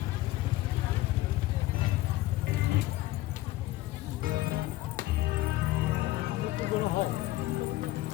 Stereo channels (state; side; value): quieter; right; 17.0 dB